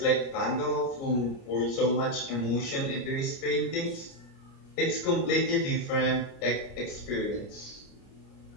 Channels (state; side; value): late; right; 30 ms